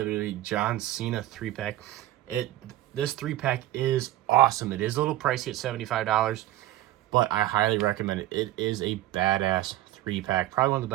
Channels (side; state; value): left; quieter; 14.5 dB